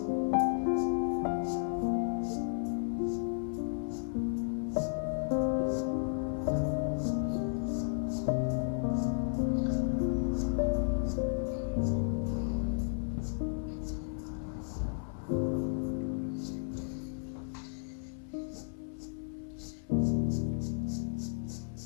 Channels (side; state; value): right; silent; 55 dB below the other